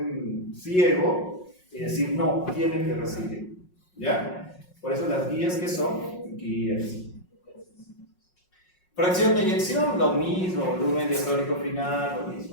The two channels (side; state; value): right; late; 5.5 ms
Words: ciego y decir, no, tiene que recibir. ¿Ya? Por eso las guías, ¿qué son? Guías. Fracción de eyección, lo mismo, volumen diastólico final, lo